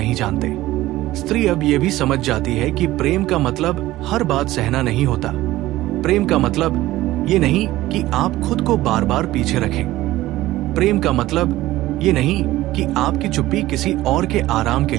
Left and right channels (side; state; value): left; quieter; 16.4 dB